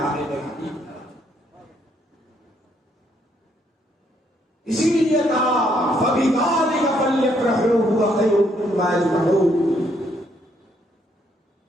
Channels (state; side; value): normal; both; correlation 0.71